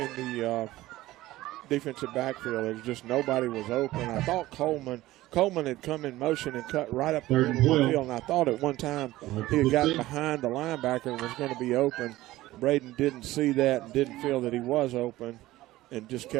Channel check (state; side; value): quieter; left; 16.7 dB